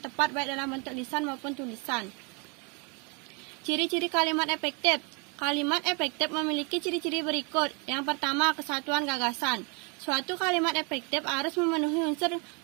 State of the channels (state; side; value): quieter; left; 32.9 dB